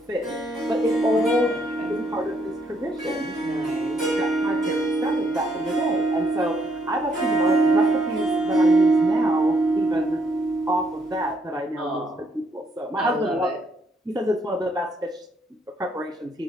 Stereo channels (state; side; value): normal; both; correlation 0.72